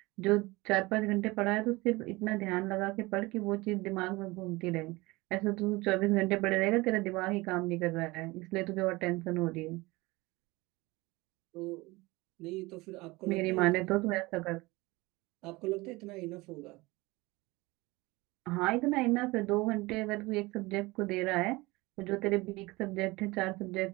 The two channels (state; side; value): quieter; left; 22.3 dB